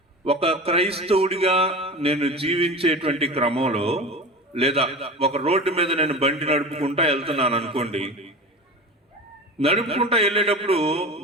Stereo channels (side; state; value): both; normal; correlation 0.31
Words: ఒక క్రైస్తవుడిగా నేను జీవించేటువంటి క్రమంలో, లేదా ఒక రోడ్డు మీద నేను బండి నడుపుకుంటా వెళ్తున్నాను అనుకోండి, నడుపుకుంటా వెళ్ళేటప్పుడు